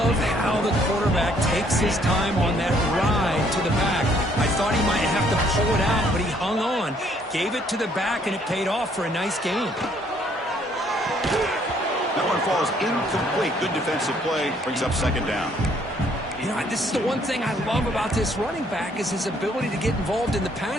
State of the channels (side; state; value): both; normal; correlation 0.65